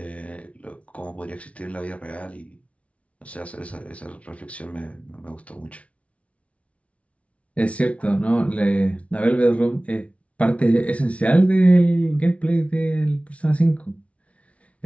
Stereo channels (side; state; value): right; late; 0.064 ms